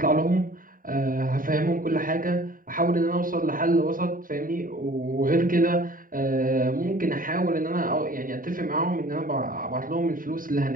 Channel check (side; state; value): left; late; 0.41 ms